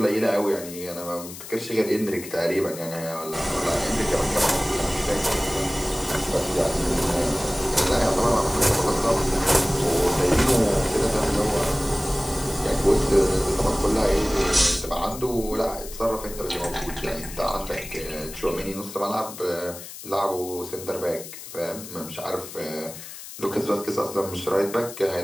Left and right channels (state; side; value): noise; left; hiss, 13 dB below the sound